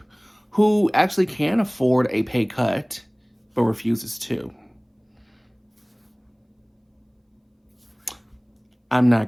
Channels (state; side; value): identical; both; correlation 1.00